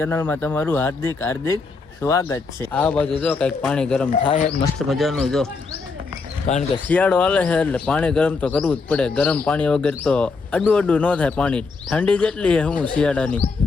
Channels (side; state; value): right; quieter; 4.3 dB